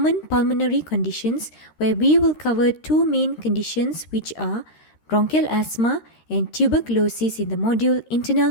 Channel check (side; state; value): right; late; 13 ms